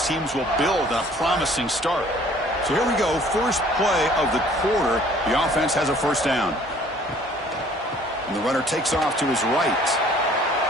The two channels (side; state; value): both; normal; correlation 0.55